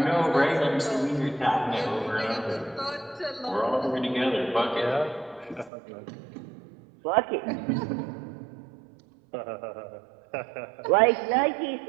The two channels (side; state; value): left; drops out; at 5.7 s